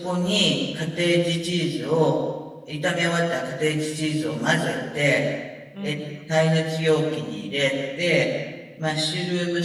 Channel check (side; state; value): both; identical; correlation 1.00